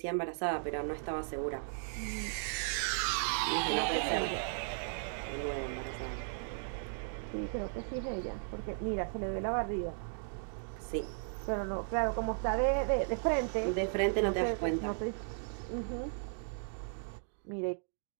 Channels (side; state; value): left; silent; digital silence